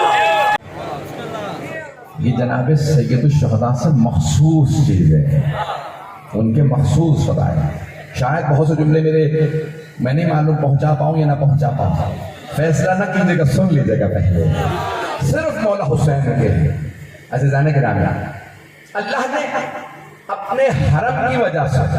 یہ جناب سید الشہداء سے مخصوص چیز ہے، ان کے مخصوص فضائل۔ شاید بہت سے جملے میں نہیں معلوم پہنچا پاؤں یا نہ پہنچا پاؤں، فیصلہ نہ کیجیے گا، سن لیجیے گا پہلے۔ صرف مولا حسین کے عزیزان گرامی، اللہ نے اپنے حرم کی وجہ سے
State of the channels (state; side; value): identical; both; correlation 1.00